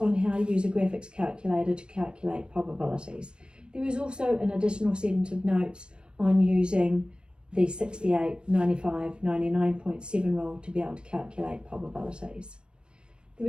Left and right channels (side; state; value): left; late; 0.052 ms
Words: how to use a graphics calculator to calculate probabilities. There is also an additional set of notes on using the 68, 95, 99.7 rule to be able to calculate probabilities. There